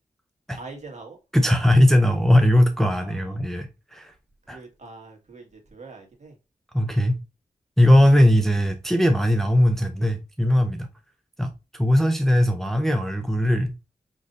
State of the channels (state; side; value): normal; both; correlation 0.95